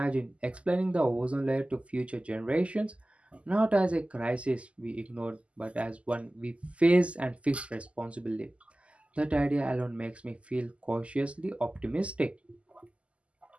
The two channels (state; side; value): late; left; 0.059 ms